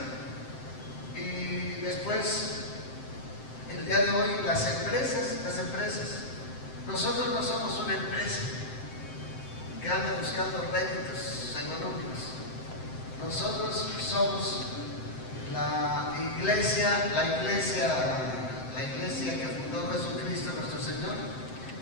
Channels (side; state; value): right; late; 7.7 ms